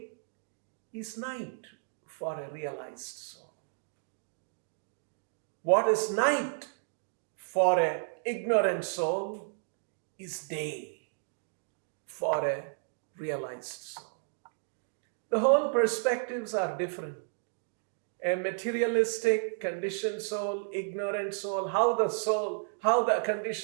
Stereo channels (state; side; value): silent; left; digital silence